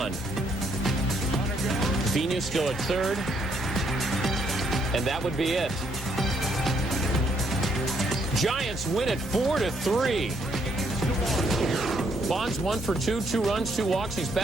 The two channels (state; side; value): normal; both; correlation 0.71